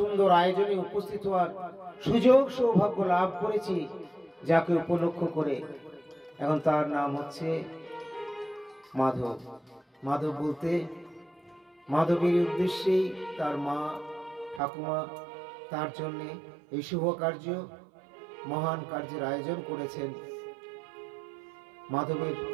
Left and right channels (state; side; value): drops out; left; at 14.6 s